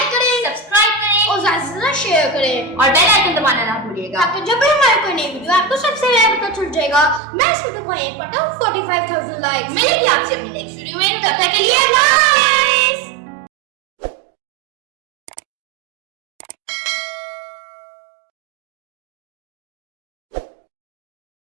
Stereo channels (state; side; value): drops out; left; at 7.2 s